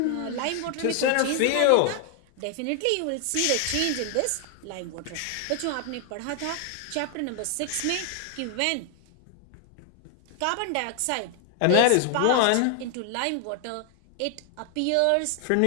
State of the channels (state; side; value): different; both; correlation 0.00